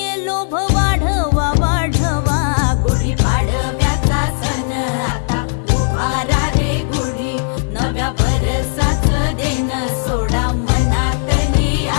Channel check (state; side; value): silent; right; 61 dB below the other